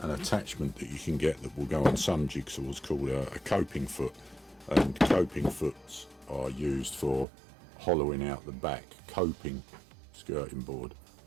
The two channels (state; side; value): drops out; left; at 7.2 s